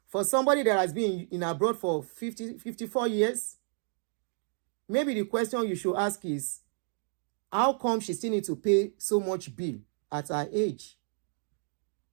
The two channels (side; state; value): left; silent; 55 dB below the other